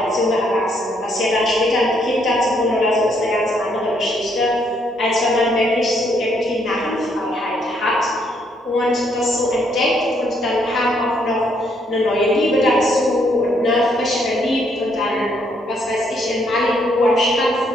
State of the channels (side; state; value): both; normal; correlation 0.71